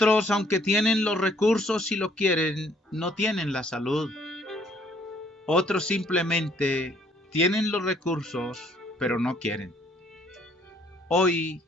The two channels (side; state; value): both; normal; correlation 0.63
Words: aunque tienen los recursos y lo quieren, no tienen la salud. Otros simplemente tienen los recursos, pero no quieren. Hoy